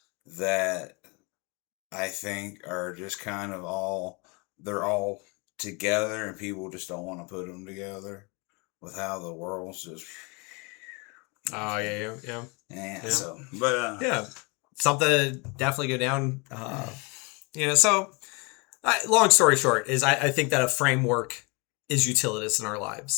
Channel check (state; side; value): quieter; right; 29.1 dB